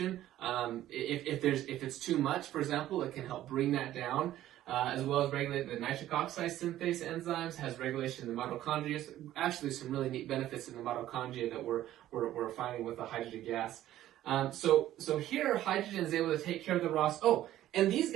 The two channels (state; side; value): quieter; left; 13.4 dB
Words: If it's too much, for example, it can help bring that down, as well as regulate the nitric oxide synthase enzymes, has regulation in the mitochondria. Actually, some really neat benefits in the mitochondria that we're finding with the hydrogen gas. So here, hydrogen is able to take care of the ROS. Oh, and these